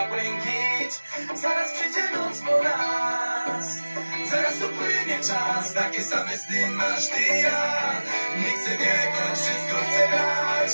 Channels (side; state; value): both; inverted; correlation -1.00